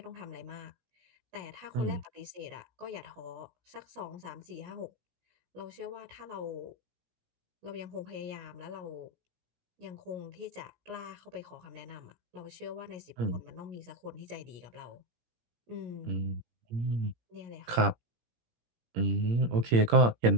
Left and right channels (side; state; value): left; late; 17 ms